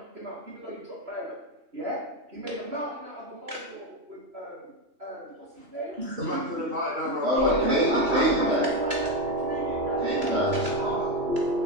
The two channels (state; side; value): late; left; 3.0 ms